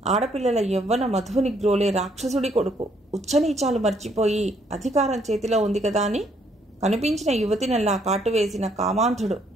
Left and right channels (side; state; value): both; normal; correlation 0.69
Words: ఆడపిల్లల యవ్వన మధువుని గ్రోలే రాక్షసుడి కొడుకు. ఉచ్చనీచాలు మర్చిపోయి అధికారం చేతిలో ఉంది కదా అని కనిపించిన యువతినల్లా కాటువేసిన కామాంధుడు